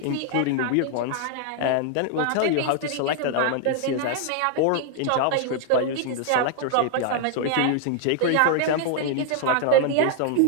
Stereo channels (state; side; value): different; both; correlation 0.00